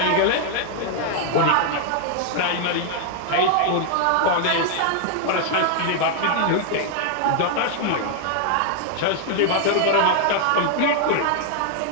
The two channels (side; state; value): both; different; correlation 0.00